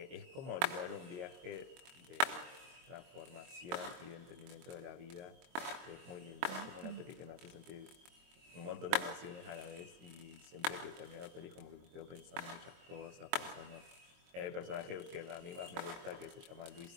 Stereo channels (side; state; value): left; late; 22 ms